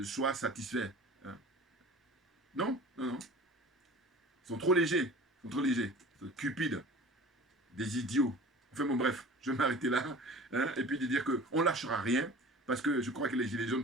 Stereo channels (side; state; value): both; normal; correlation 0.41